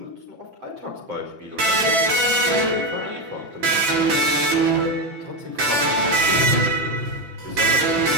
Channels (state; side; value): late; left; 6.0 ms